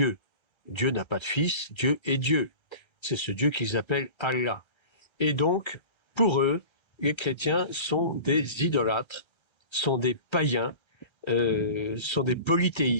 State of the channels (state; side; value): late; right; 1.3 ms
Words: Dieu n'a pas de fils, Dieu est Dieu. C'est ce Dieu qu'ils appellent Allah. Et donc, pour eux, les chrétiens sont des idolâtres, sont des païens, sont des